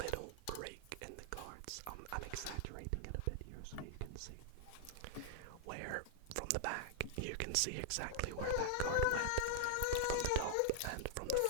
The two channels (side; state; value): both; different; correlation -0.01